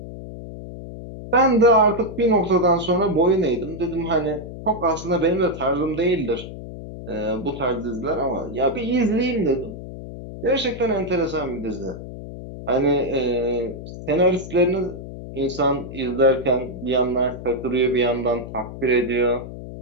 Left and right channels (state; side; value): noise; left; hum, 11 dB below the sound